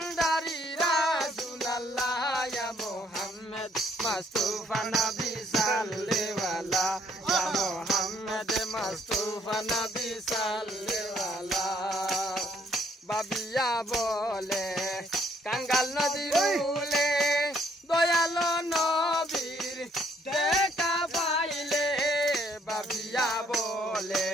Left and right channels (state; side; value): normal; both; correlation 0.67